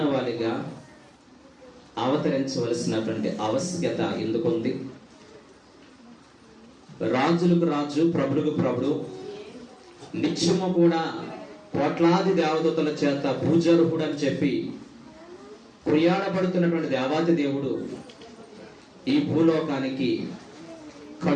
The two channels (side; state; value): both; identical; correlation 1.00